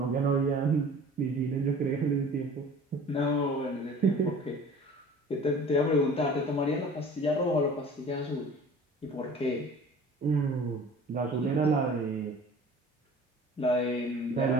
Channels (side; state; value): both; normal; correlation 0.45